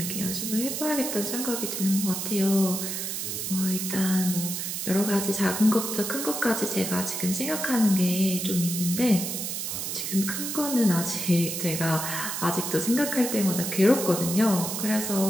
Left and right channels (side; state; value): right; noise; hiss, 3 dB below the sound